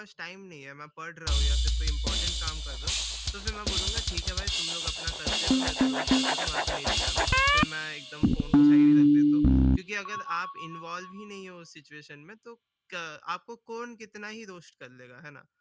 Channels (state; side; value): identical; both; correlation 1.00